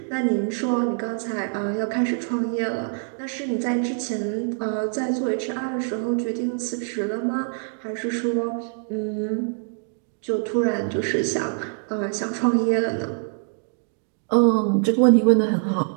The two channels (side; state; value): left; silent; digital silence